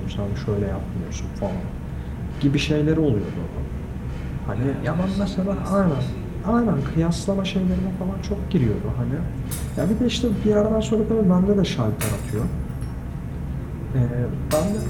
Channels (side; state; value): both; identical; correlation 1.00